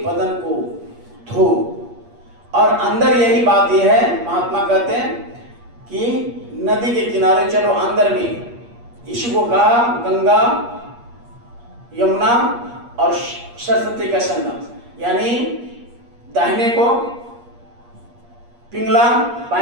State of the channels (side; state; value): left; late; 8.4 ms